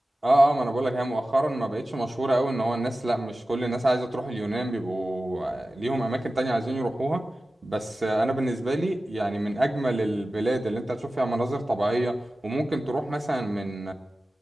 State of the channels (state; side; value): normal; both; correlation 0.95